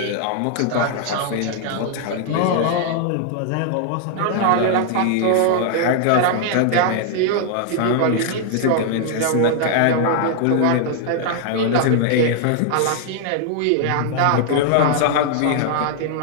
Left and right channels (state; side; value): different; both; correlation -0.01